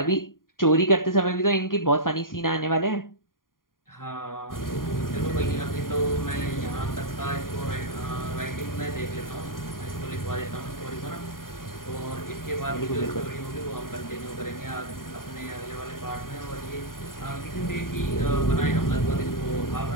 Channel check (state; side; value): late; right; 0.91 ms